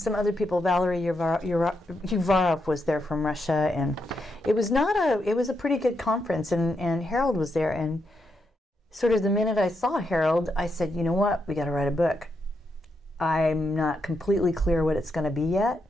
other people. Valery Uvarov was there from Russia, and it was a pretty good conference, and Harold was there, and sort of the minute I saw Harold, I said, you know what, we got to write a book. I'm not completely clear what it's going to be yet,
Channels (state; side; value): normal; both; correlation 0.82